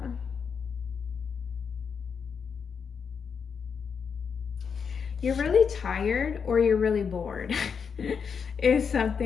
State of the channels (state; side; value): quieter; right; 6.3 dB